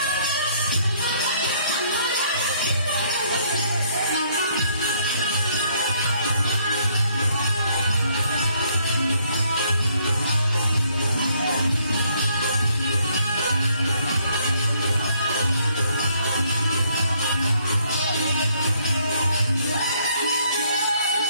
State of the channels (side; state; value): both; inverted; correlation -0.67